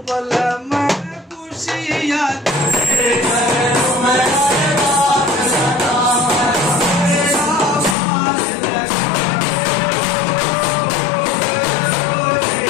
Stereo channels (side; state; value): right; drops out; at 8.0 s